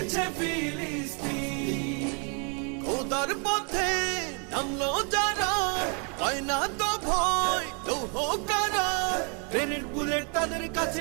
ফিলিস্তিন। খোদার পথে নামলো যারা, হয় না তো ভয় লৌহ কারা, ট্রেনের বুলেট তাদের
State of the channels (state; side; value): quieter; left; 37.5 dB